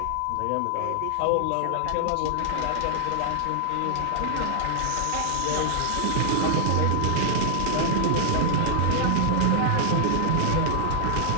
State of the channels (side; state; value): both; different; correlation -0.01